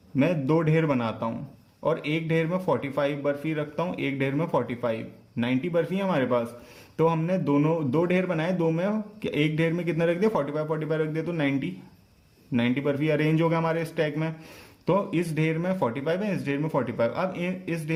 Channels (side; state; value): both; identical; correlation 1.00